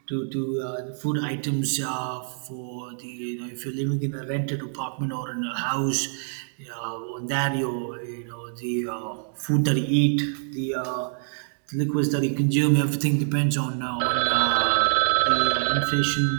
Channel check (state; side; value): silent; left; digital silence